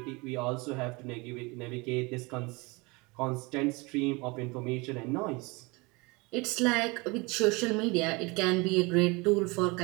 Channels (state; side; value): quieter; left; 26.2 dB